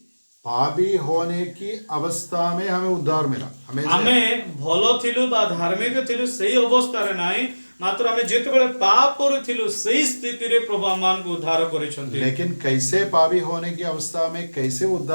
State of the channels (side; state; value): both; inverted; correlation -1.00